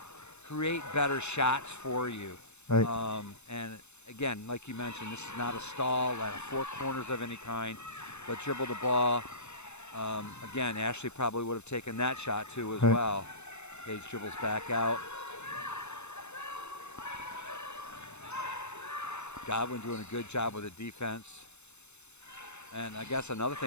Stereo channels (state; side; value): late; right; 0.81 ms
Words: better shots for you. Right. And again, like you mentioned, this is not a stall at four corners of any kind, but dribble the ball. Again, Ashley probably would have taken that shot too as Right. well. Paige dribbles back out. Godwin doing a good job with the defense. And I guess another